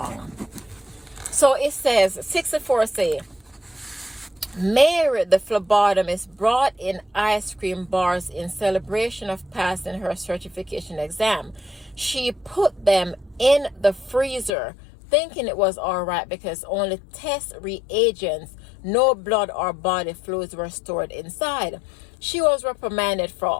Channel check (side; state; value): right; drops out; at 14.5 s